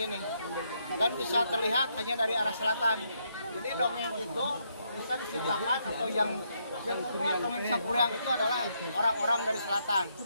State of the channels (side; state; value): both; inverted; correlation -0.76